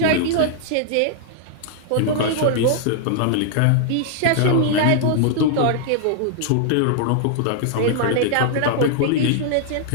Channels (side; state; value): both; different; correlation -0.01